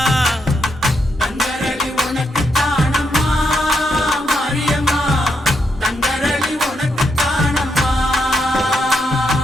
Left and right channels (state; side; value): normal; both; correlation 0.81